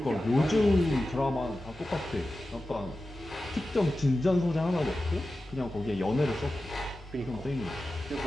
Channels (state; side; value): normal; both; correlation 0.93